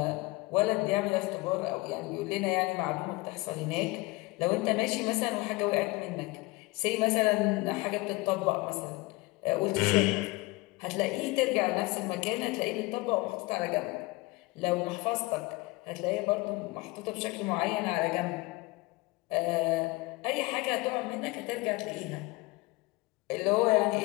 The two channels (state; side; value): quieter; right; 22.9 dB